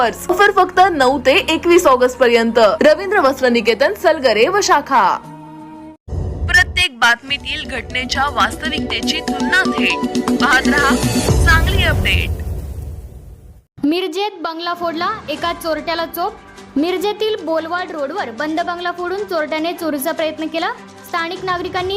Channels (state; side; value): identical; both; correlation 1.00